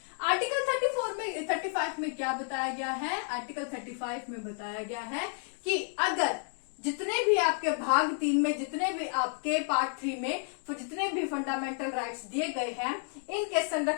आर्टिकल 35 में क्या बताया गया है? आर्टिकल 35 में बताया गया है कि अगर जितने भी आपके भाग 3 में, जितने भी आपके पार्ट 3 में जितने भी फंडामेंटल राइट्स दिए गए हैं, इनके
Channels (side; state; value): right; silent; 57 dB below the other